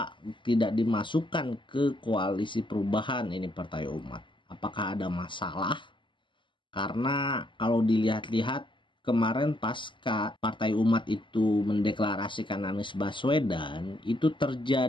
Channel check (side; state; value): right; late; 0.24 ms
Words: tidak dimasukkan ke koalisi perubahan ini Partai Umat. Apakah ada masalah? Karena kalau dilihat-lihat kemarin pasca Partai Umat itu mendeklarasikan Anies Baswedan, itu